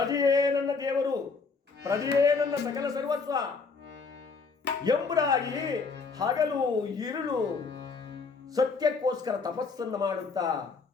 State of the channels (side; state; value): right; quieter; 4.7 dB